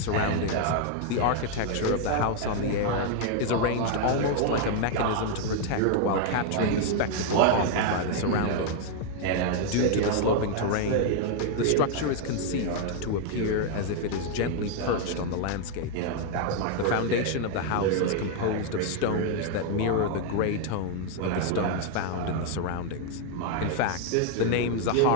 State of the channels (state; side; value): different; both; correlation 0.00